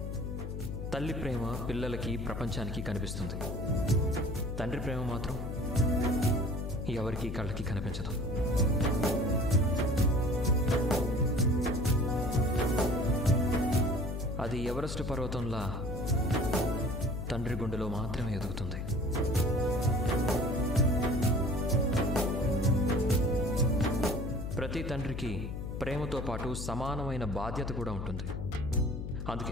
తల్లి ప్రేమ పిల్లలకి ప్రపంచానికి కనిపిస్తుంది. తండ్రి ప్రేమ మాత్రం ఎవరికి కళ్ళకి కనిపించదు. అది ఎవరెస్ట్ పర్వతంలా తండ్రి గుండెలో మాత్రమే ఎదుగుతుంది. ప్రతి తండ్రికి ప్రేమతో పాటు సమానమైన బాధ్యత కూడా ఉంటుంది.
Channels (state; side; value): noise; left; hum, 5 dB below the sound